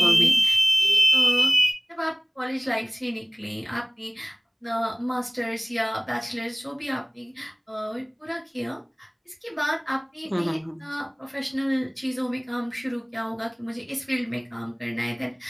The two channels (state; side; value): identical; both; correlation 1.00